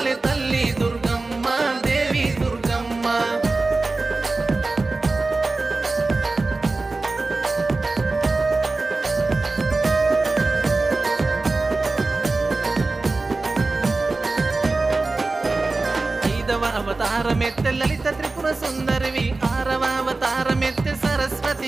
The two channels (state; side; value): quieter; left; 3.5 dB